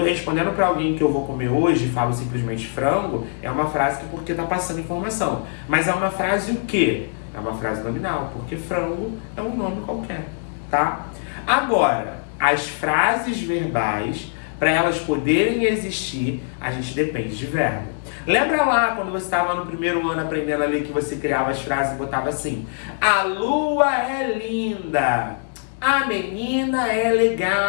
respondendo para alguém que eu vou comer hoje e falo simplesmente frango, é uma frase que porque está passando informação. Mas é uma frase o quê? É uma frase nominal, porque frango é um nome qualquer. Tá? Agora, as frases verbais, para elas poderem existir, a gente depende de verbo. Lembra lá quando você estava no primeiro ano aprendendo a ler que você criava as frases e botava assim: a lua é linda, a menina é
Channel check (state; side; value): silent; right; digital silence